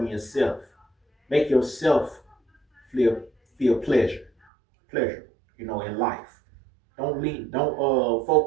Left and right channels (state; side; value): drops out; left; at 4.3 s